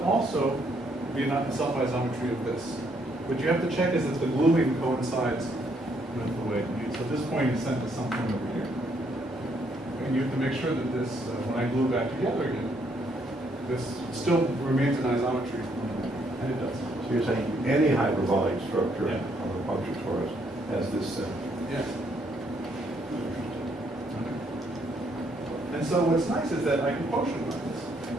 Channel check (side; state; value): both; normal; correlation 0.71